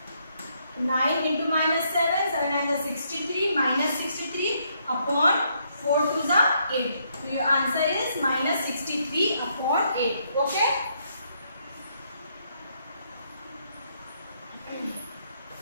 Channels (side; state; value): both; inverted; correlation -0.73